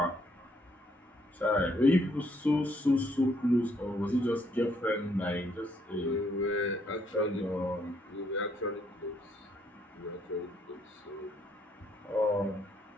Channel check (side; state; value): both; normal; correlation 0.70